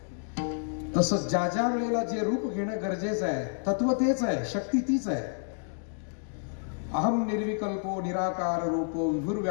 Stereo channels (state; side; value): silent; right; digital silence